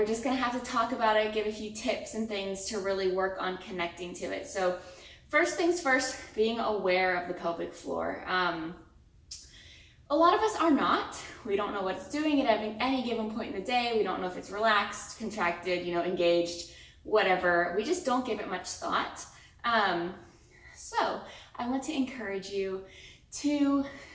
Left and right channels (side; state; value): both; identical; correlation 1.00